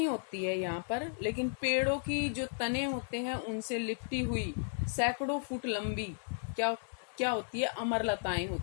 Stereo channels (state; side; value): silent; right; 55 dB below the other